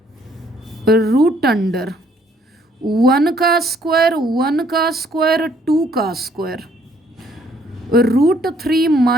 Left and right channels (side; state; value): both; normal; correlation 0.65